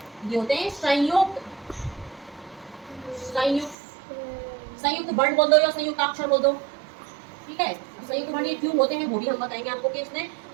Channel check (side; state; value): left; drops out; at 3.8 s